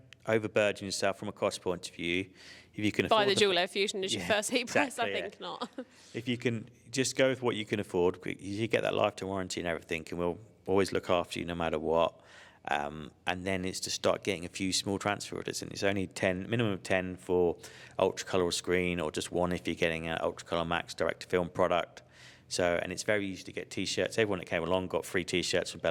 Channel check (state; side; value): identical; both; correlation 1.00